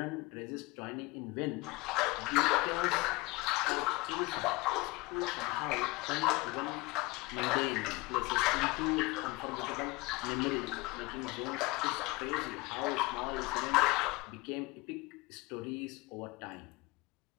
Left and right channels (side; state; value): right; quieter; 23.7 dB